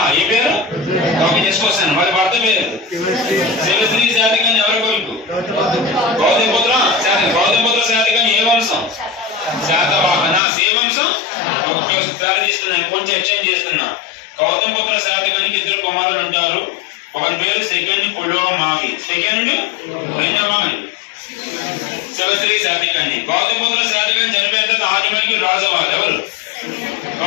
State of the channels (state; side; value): drops out; right; at 10.4 s